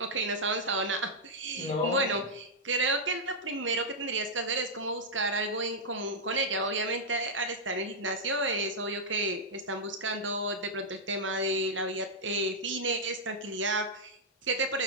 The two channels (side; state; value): both; normal; correlation -0.07